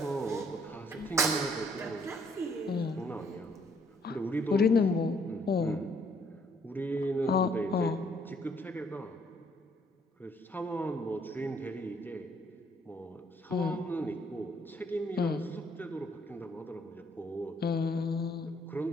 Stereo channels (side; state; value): both; normal; correlation 0.66